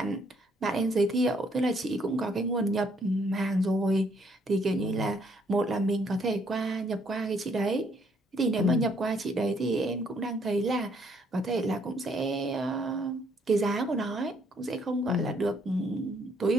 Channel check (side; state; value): both; normal; correlation 0.68